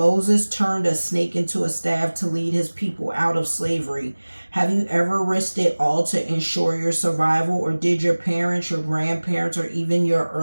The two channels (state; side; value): inverted; both; correlation -1.00